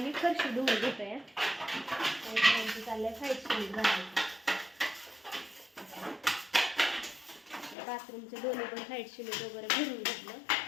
फरशी धुवून घेतोय. आमचं चाललंय व्हाईट सिमेंट भरायचं. बाथरूमचे दोन्ही पण व्हाईट सिमेंट वगैरे भरून घेतलं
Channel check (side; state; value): right; drops out; at 7.8 s